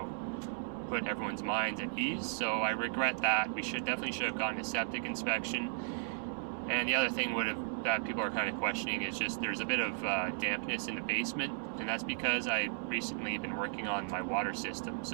put everyone's minds at ease. So I regret that. We definitely should have gotten a septic inspection. And the other thing that people are kind of questioning is just there's a bit of dampness in the basement, and that's because I recently been working on my water system,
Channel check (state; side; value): silent; left; 54 dB below the other